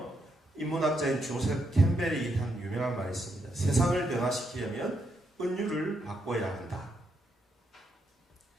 인문학자인 조셉 캠벨이 한 유명한 말이 있습니다. 세상을 변화시키려면 은유를 바꿔야 한다.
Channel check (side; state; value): both; normal; correlation 0.79